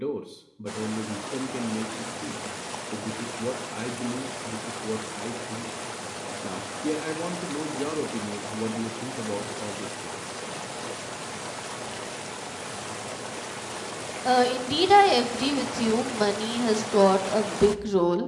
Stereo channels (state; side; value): identical; both; correlation 1.00